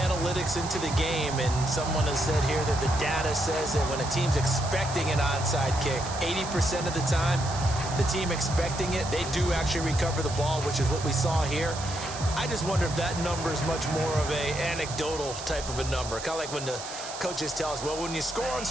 into the game, and someone has said here that the data says that when a team's expecting an onside kick, 80% of the time, the team expecting it, they do actually recover the ball, which is what we saw here. I just wonder if that number is much more of a anecdotal type of a number. Kind of like when the coaches tell us, well, when you score on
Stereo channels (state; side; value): noise; right; hiss, 10 dB below the sound